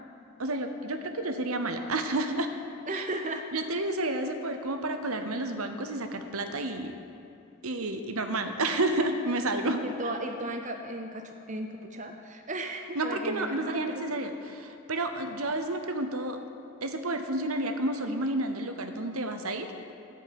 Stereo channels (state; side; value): normal; both; correlation 0.07